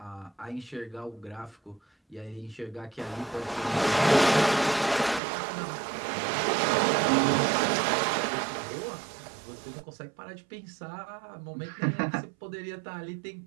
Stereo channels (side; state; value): left; drops out; at 5.2 s